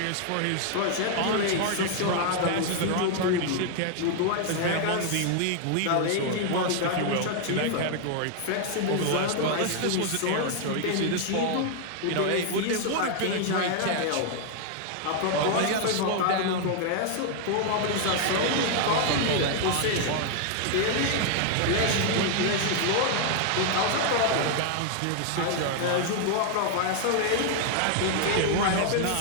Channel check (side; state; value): both; different; correlation 0.00